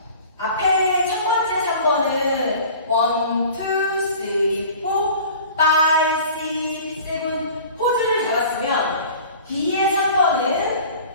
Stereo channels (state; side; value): inverted; both; correlation -0.43